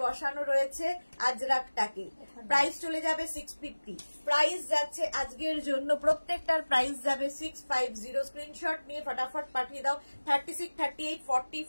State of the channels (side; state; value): both; inverted; correlation -1.00